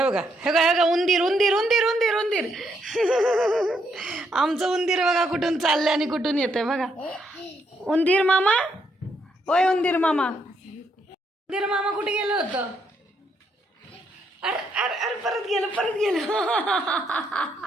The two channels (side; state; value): both; normal; correlation 0.75